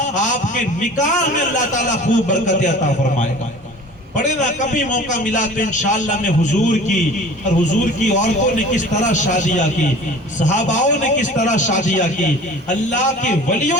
آپ کے نکاح میں اللہ تعالیٰ خوب برکت عطا فرمائے گا. پڑھے نا کبھی موقع ملا تو انشاءاللہ میں حضور کی اور حضور کی عورتوں نے کس طرح شادیاں کی، صحاباؤں نے کس طرح شادیاں کی، اللہ کے ولیوں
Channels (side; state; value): both; normal; correlation 0.43